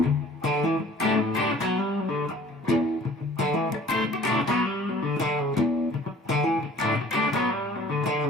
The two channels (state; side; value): normal; both; correlation 0.51